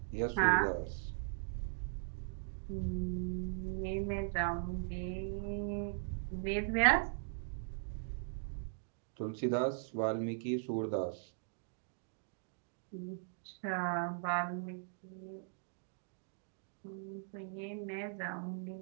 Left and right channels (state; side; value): silent; left; digital silence